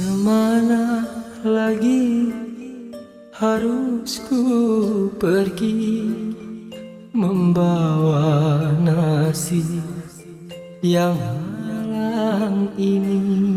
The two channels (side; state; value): both; identical; correlation 1.00